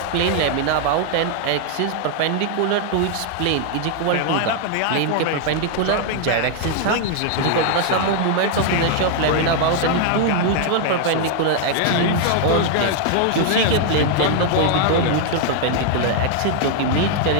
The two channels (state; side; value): different; both; correlation 0.00